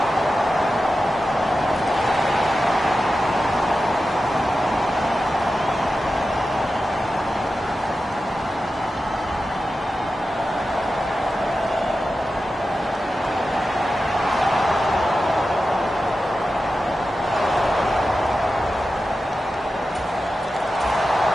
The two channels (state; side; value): normal; both; correlation 0.92